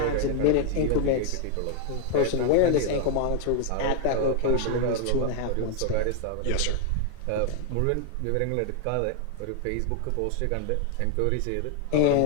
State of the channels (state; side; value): different; both; correlation 0.01